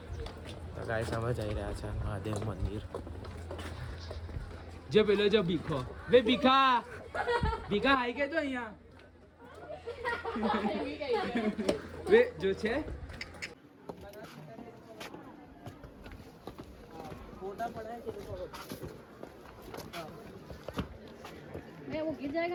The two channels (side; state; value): both; identical; correlation 1.00